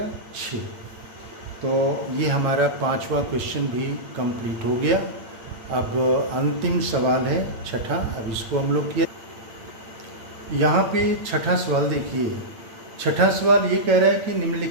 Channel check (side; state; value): left; late; 8.8 ms